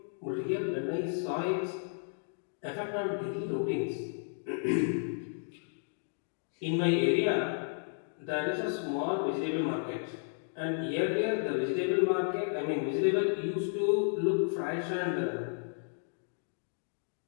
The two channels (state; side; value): silent; right; digital silence